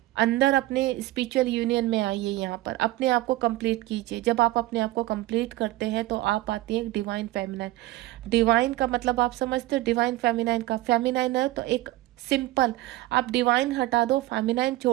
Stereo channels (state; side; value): quieter; left; 17.7 dB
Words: अंदर अपने स्पिरिचुअल यूनियन में आइए, यहाँ पर अपने आप को कंप्लीट कीजिए। जब आप अपने आप को कंप्लीट करते हैं तो आप आती है डिवाइन फेमिनाइन। डिवाइन का मतलब आप समझते हो, डिवाइन फेमिनाइन का, फेमिनाइन है तो एक सिंपल, आप डिवाइन हटा दो, फेमिनाइन